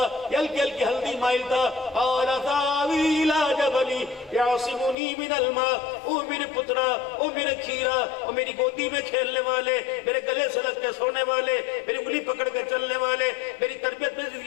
یہ ہلکی ہلکی ہلدی مائل تھا. قال ساوی الی جبل یعصمنی من الماء. او میرے پترا, او میرے کھیرا, او میری گودی میں کھیلنے والے, میرے گلے سے لگ کے سونے والے, میری انگلی پکڑ کے چلنے والے, میری تربیت میں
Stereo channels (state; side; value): drops out; right; at 5.0 s